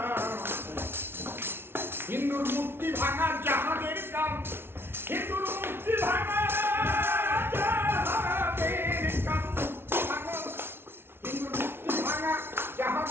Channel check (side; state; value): left; late; 0.11 ms